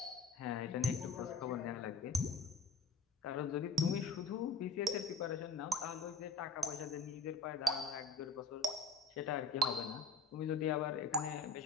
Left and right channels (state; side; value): quieter; right; 3.8 dB